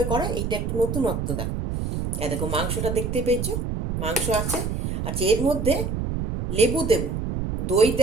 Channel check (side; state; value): right; noise; rumble, 2 dB below the sound